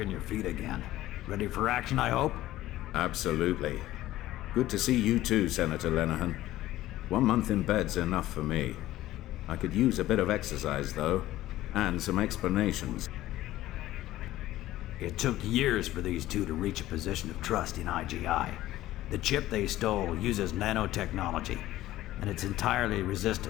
your feet again. Ready for action, I hope? Absolutely. Good to see you too, Senator Lenehan. 1 month in bed's enough for me. I could use a bit of exercise, though, and some explanations. It took years for these two to reach a position of trust in I.G.I. The chip they stole uses nanotechnology, and it's entirely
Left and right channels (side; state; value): right; quieter; 15.2 dB